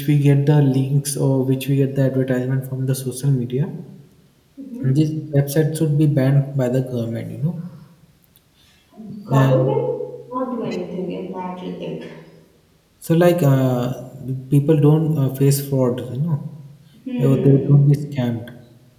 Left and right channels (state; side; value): identical; both; correlation 1.00